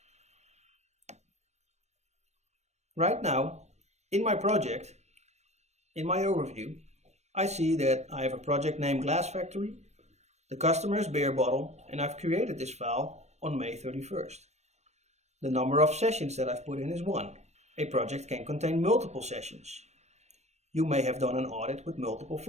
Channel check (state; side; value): late; left; 0.32 ms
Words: Right now, in my project, in my overview, I see that I have a project named Glass Factory, the customer is Beer Bottle, and I've created this file on May 31st. The number of sessions that I've put in is 1. A project can contain multiple sessions. You may have done an audit with multiple